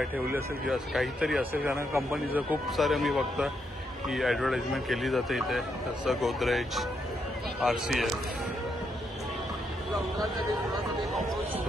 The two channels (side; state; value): both; normal; correlation 0.79